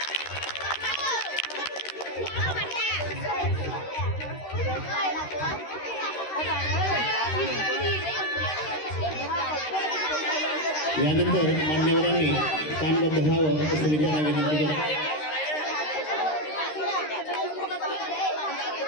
यानंतर मान्यवरांनी कानबद्ध व्हावं असं मी त्यांना विनंती करतो.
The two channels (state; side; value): late; right; 13 ms